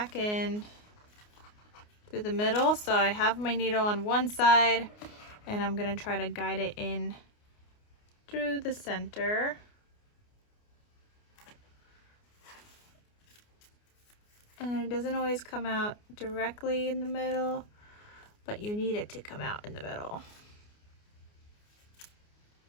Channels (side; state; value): right; late; 29 ms